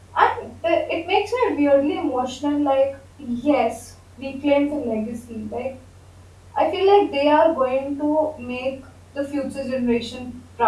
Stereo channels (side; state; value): both; identical; correlation 1.00